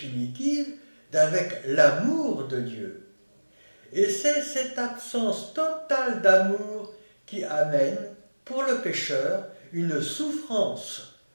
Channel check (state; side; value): inverted; both; correlation -1.00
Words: d'avec l'amour de Dieu. Et c'est cette absence totale d'amour qui amène, pour le pécheur, une souffrance